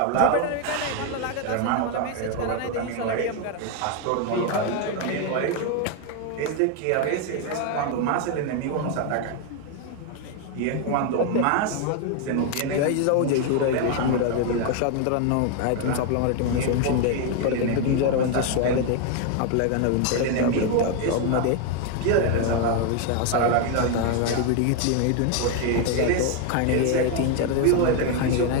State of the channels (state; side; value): different; both; correlation 0.01